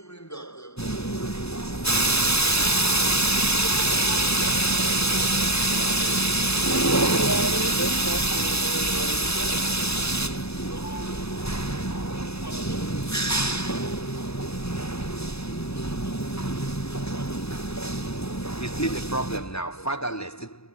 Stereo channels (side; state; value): right; late; 0.79 ms